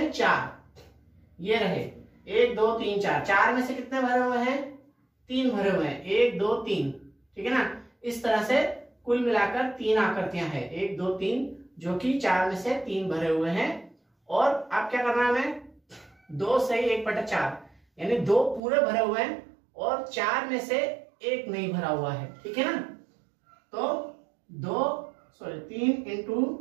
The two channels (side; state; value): left; drops out; at 18.6 s